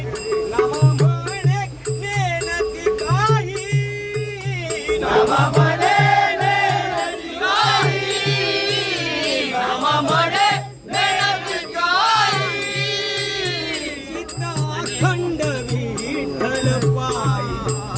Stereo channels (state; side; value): identical; both; correlation 1.00